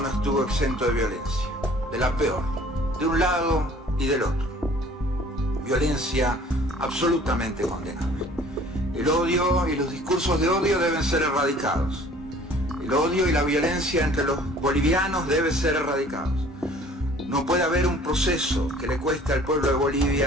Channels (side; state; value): both; normal; correlation 0.52